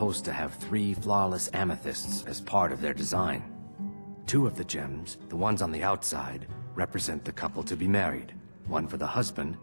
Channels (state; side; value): inverted; both; correlation -1.00